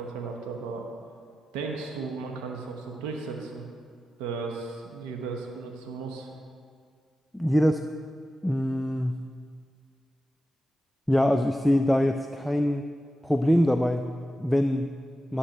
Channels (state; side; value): normal; both; correlation 0.92